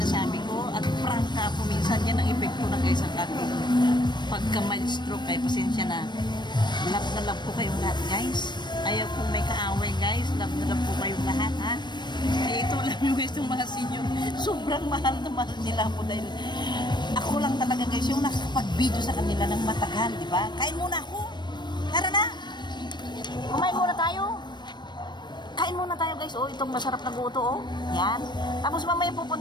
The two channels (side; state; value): right; late; 0.22 ms